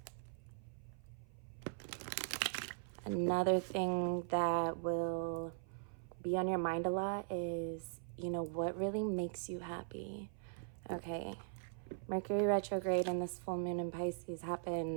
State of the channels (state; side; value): silent; left; 51 dB below the other